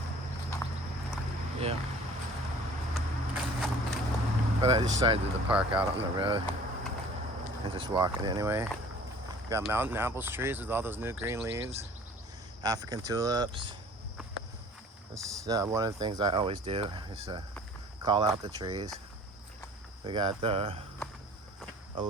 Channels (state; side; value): normal; both; correlation 0.49